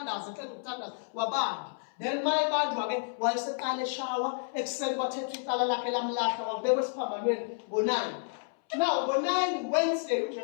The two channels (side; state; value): right; silent; 57 dB below the other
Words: eqeda ukuthandaza wabanjwa. Then mayebanjwa ke wayeseqala eshawa ekuseni kwathethwa icala lakhe lamlahla wabekwa esiphambanweni ngo9. Now ngo9 Wednesday